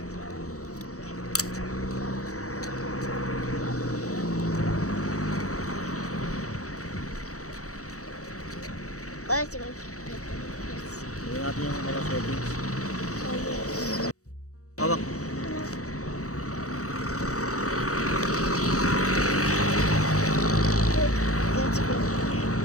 Tingnan natin yung mga settings. Hawak.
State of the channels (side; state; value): right; late; 0.65 ms